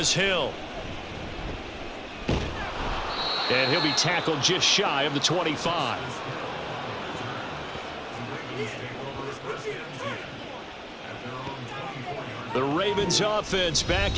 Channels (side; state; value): both; identical; correlation 1.00